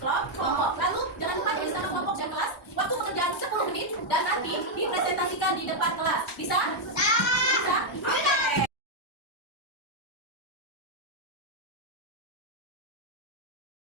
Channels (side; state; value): both; normal; correlation -0.01